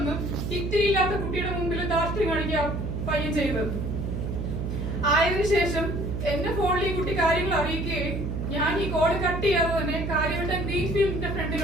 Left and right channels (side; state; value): right; noise; hum, 3 dB below the sound